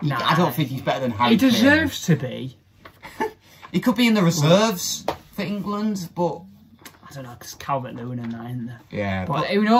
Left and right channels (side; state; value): both; identical; correlation 1.00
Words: Nah, I don't think he's better than Harry He deserves to be. He could be in the reserves for England, but... I don't know, because Calvert-Lewin and that, isn't there? Yeah. But who